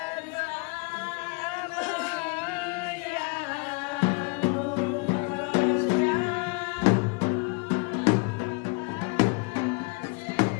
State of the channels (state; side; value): quieter; right; 31.8 dB